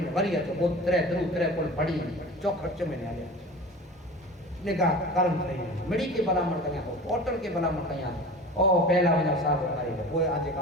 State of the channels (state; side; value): normal; both; correlation 0.36